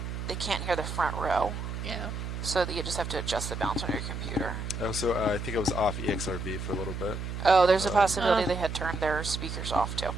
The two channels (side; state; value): right; noise; hum, 5 dB below the sound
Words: can't hear the front row. Yeah. So that you just have to adjust the balance on your computer. Oh, so I think I was off EXRV for a little bit. Oh, there's a possibility they had turned their speakers off too.